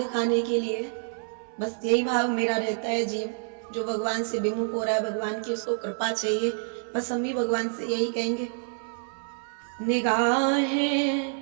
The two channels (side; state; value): left; silent; 60 dB below the other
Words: के लिए बस यही भाव मेरा रहता है। जीव जो भगवान से विमुख हो रहा है, भगवान की उसको कृपा चाहिए। बस हम भी भगवान से यही कहेंगे, निगाहें